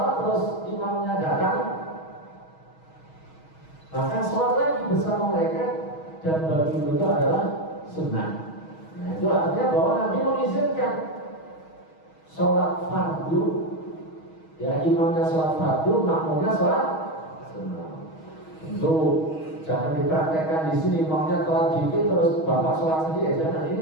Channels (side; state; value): right; late; 6.3 ms